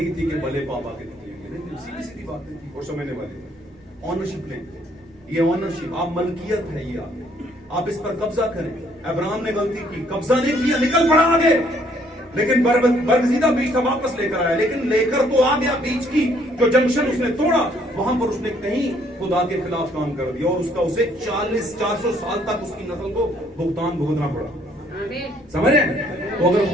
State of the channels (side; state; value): both; normal; correlation 0.65